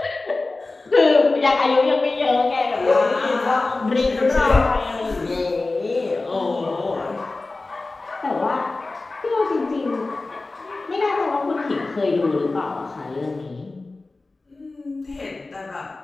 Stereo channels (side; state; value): right; quieter; 3.4 dB